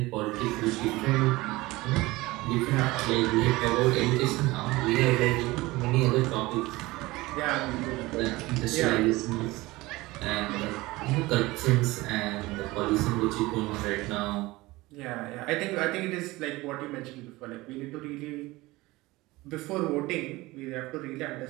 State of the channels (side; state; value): left; quieter; 20.4 dB